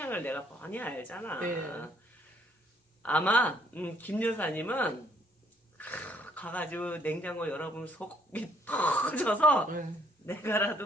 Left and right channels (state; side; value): normal; both; correlation 0.65